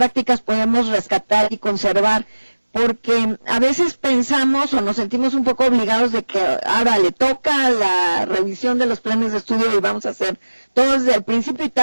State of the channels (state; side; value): inverted; both; correlation -1.00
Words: podemos rescatar y conservar? Porque a veces pensamos o nos sentimos un poco obligados de que ahora le toca la revisión de los planes de estudio y vamos a hacer todo desde el principio, y